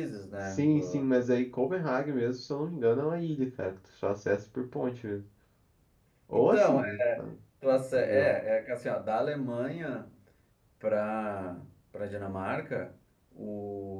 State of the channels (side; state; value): both; identical; correlation 1.00